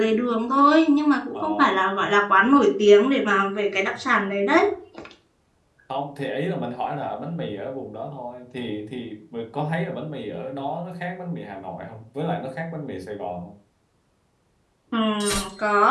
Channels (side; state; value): both; identical; correlation 1.00